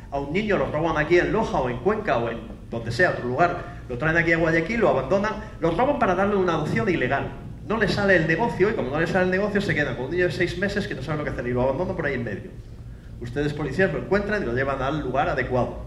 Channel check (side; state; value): both; identical; correlation 1.00